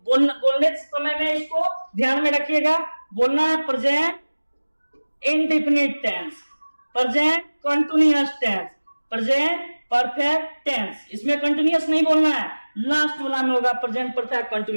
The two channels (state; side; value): inverted; both; correlation -1.00